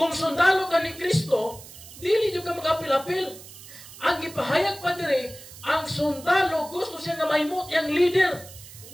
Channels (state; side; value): noise; right; hiss, 17 dB below the sound